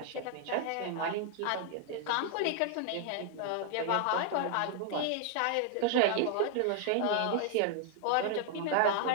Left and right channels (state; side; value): different; both; correlation 0.00